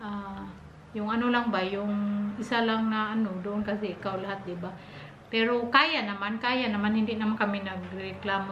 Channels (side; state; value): both; identical; correlation 1.00